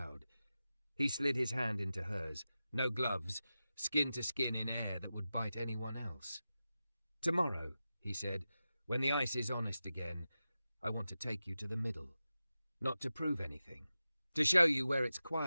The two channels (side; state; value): both; inverted; correlation -0.93